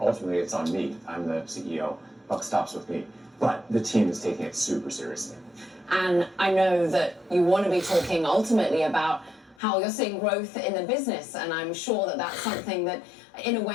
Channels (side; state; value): right; drops out; at 9.6 s